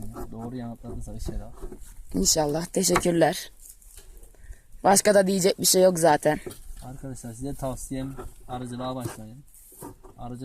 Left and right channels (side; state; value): both; identical; correlation 1.00